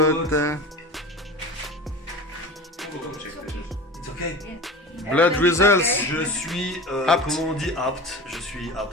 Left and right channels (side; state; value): both; normal; correlation 0.34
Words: It's okay. Blood results. Je suis, Apte. comment on dit apte? Je suis